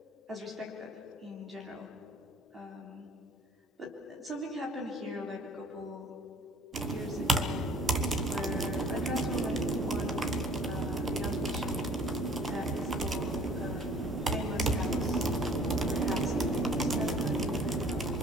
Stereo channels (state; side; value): normal; both; correlation 0.52